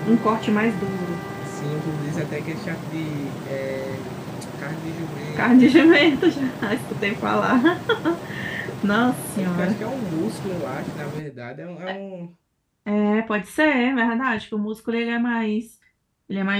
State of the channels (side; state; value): both; identical; correlation 1.00